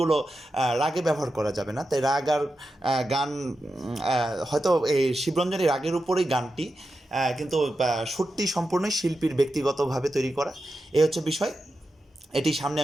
রাগে ব্যবহার করা যাবে না। তাই রাগ আর গান, হয়তো এই শিবরঞ্জনী রাগের উপরেই গানটি, কিন্তু সুরটি সম্পূর্ণই শিল্পীর ব্যক্তিগতভাবে তৈরি করা। এই হচ্ছে বিষয়। এটি সামনে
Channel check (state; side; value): normal; both; correlation 0.90